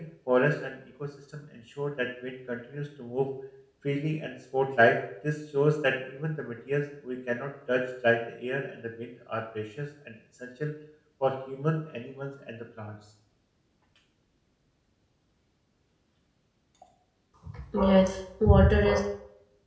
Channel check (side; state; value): both; identical; correlation 1.00